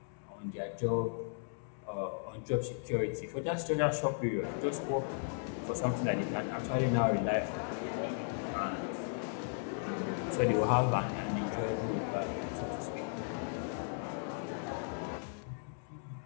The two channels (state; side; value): silent; right; digital silence